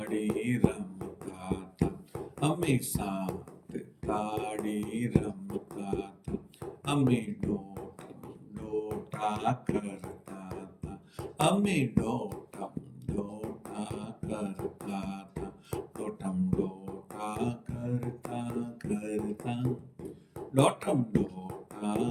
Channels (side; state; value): both; identical; correlation 1.00